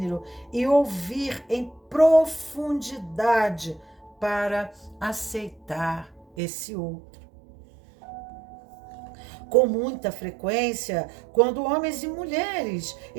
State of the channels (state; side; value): drops out; left; at 6.2 s